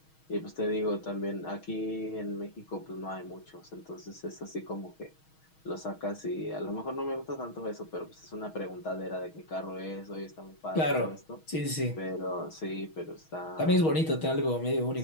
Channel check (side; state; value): right; late; 6.3 ms